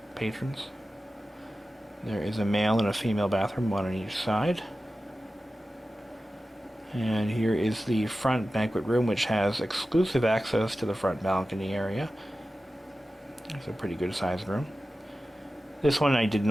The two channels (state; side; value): normal; both; correlation 0.94